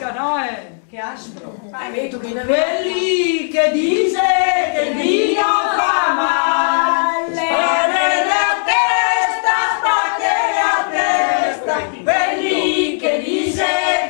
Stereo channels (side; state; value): right; silent; digital silence